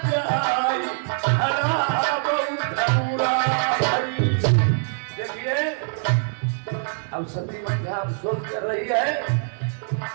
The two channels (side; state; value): left; silent; digital silence